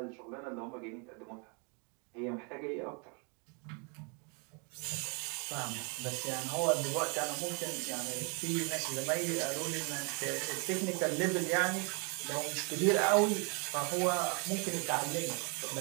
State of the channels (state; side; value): quieter; left; 35.4 dB